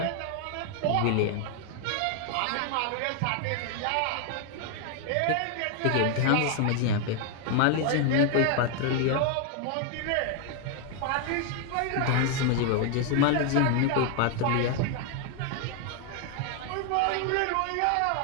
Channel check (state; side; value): different; both; correlation 0.00